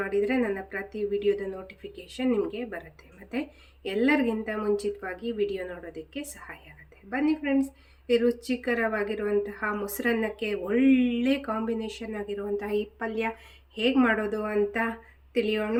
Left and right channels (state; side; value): identical; both; correlation 1.00